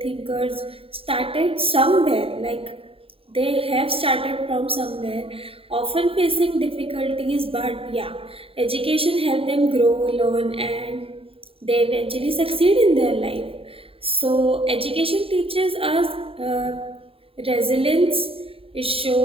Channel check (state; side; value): late; left; 0.27 ms